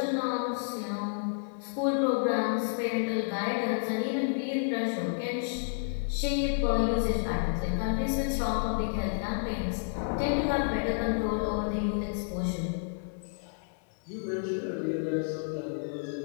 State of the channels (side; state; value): right; silent; digital silence